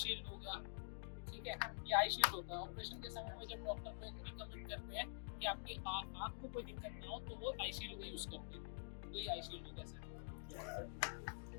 हो गया। ठीक है, ये आई शील्ड होता है। ऑपरेशन के समय में जब डॉक्टर को रिकमेंड करते हैं कि आपकी आँख को कोई दिक्कत ना हो तो वो आई शील्ड का यूज़ करते हैं। तो ये आई शील्ड होता है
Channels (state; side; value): silent; right; digital silence